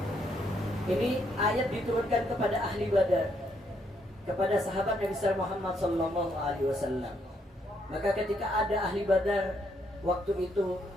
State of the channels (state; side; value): normal; both; correlation 0.74